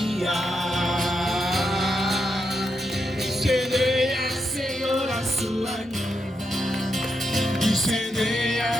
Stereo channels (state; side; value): normal; both; correlation 0.83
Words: Incendeia, Senhor, a sua noiva.